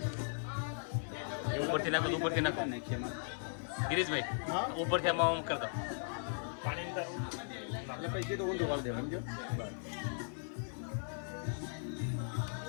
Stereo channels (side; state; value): right; silent; digital silence